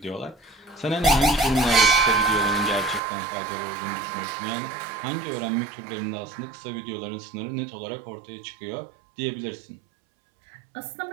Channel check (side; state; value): left; drops out; at 3.0 s